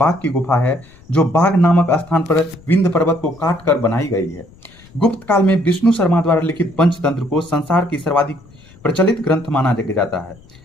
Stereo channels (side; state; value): left; noise; rumble, 25 dB below the sound